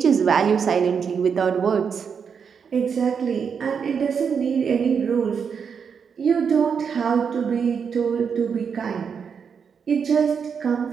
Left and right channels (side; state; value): left; quieter; 6.6 dB